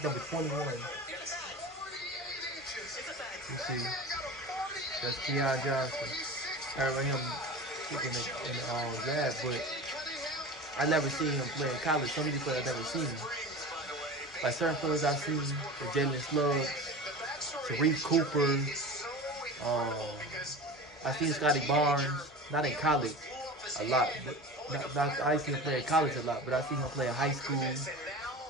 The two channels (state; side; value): normal; both; correlation 0.33